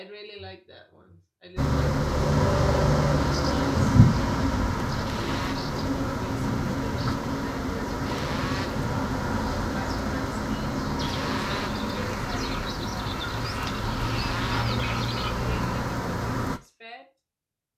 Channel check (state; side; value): identical; both; correlation 1.00